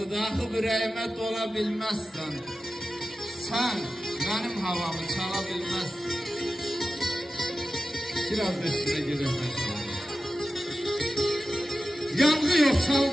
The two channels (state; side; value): normal; both; correlation 0.93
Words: Axı ürəyimə dola bilməzsən. Sən mənim havamı çala bilməzsən. Biraz da üstüne girelim. Yanğı yok